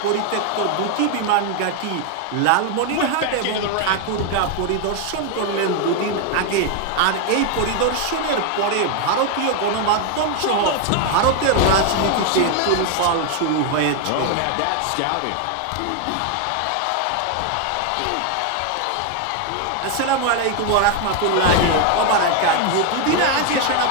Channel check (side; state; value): both; different; correlation 0.01